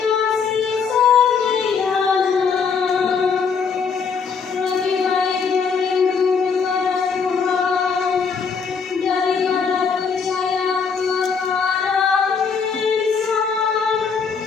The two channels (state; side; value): quieter; right; 5.8 dB